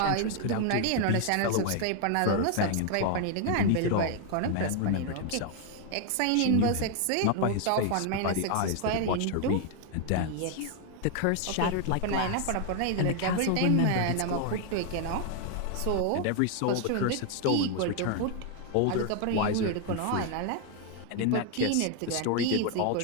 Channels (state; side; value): different; both; correlation 0.00